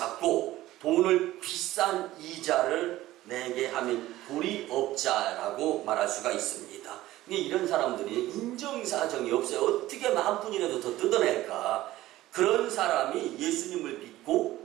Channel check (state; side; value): quieter; left; 15.9 dB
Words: 돈을 비싼 이자를 내게 하면 도리업자라고 말할 수가 있습니다. 근데 이런 사람들이 인정사정이 없어요. 어떻게 만 푼이라도 더 뜯어낼까? 그런 사람이 예수님을